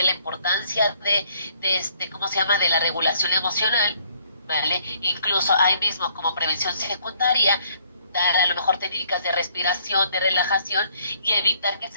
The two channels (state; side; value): inverted; both; correlation -0.64